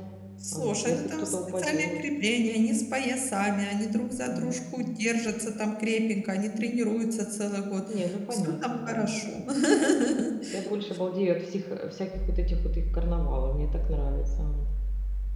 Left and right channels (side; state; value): both; identical; correlation 1.00